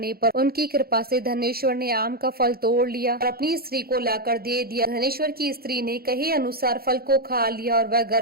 पर उनकी कृपा से धनेश्वर ने आम का फल तोड़ लिया और अपनी स्त्री को लाकर दे दिया। धनेश्वर की स्त्री ने कहे अनुसार फल को खा लिया और वह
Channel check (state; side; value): late; left; 0.44 ms